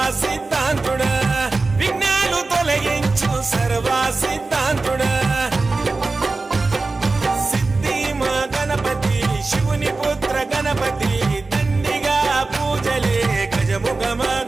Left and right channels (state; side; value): quieter; left; 3.6 dB